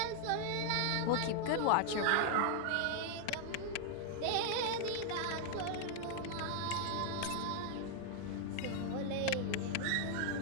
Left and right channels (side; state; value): both; different; correlation 0.00